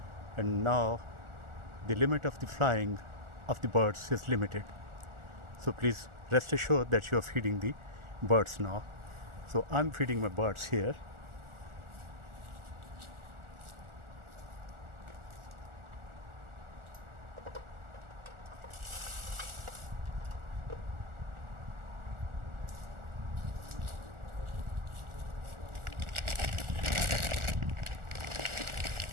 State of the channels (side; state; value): left; late; 1.4 ms